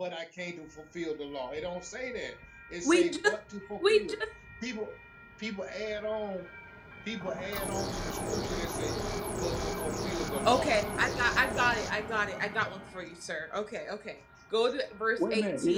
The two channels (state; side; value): identical; both; correlation 1.00